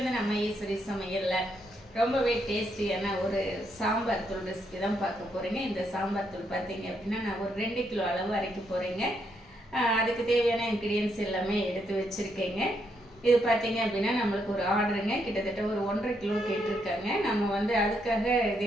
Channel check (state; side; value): normal; both; correlation 0.77